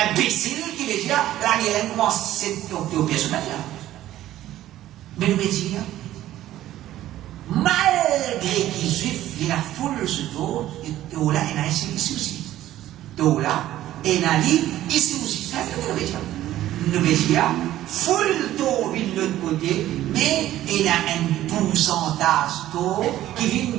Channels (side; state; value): left; quieter; 13.7 dB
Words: imbécile qui veut dire la guerre commence cette coupe de personnage. Mais nous dire, malgré qu'ils juifs, il y a la foule ce dos, et là, il y a ici aussi. Donc là, il y a ici aussi. C'est ce que nous veut dire. Nous veut dire, full taux vient de l'autre côté, mais il y a un pourcentage taux qui vient